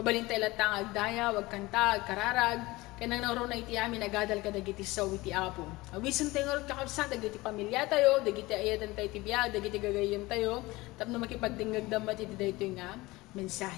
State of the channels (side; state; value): right; quieter; 20.7 dB